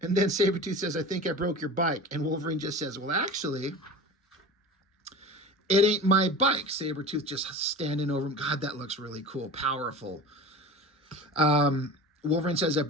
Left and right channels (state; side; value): normal; both; correlation 0.34